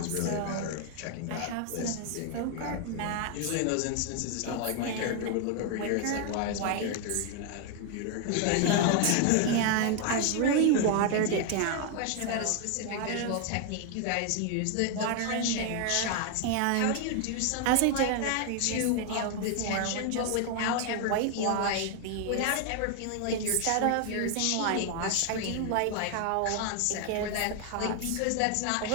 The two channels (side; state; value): both; different; correlation 0.00